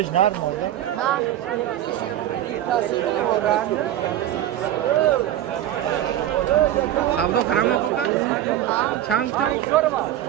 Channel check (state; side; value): quieter; left; 12.3 dB